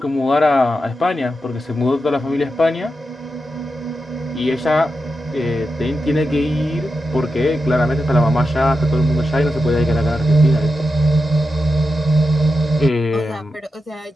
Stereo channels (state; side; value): normal; both; correlation 0.89